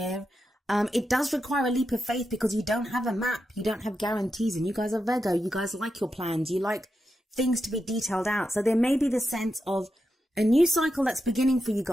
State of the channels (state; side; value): normal; both; correlation 0.87